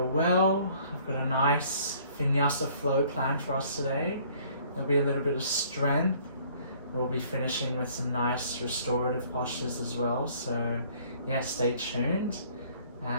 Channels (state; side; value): inverted; both; correlation -0.58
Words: well. I've got a nice Vinyasa flow planned for us today. There'll be a little bit of strength. We'll be finishing with some nice restorative postures as well. So yeah, stay tuned.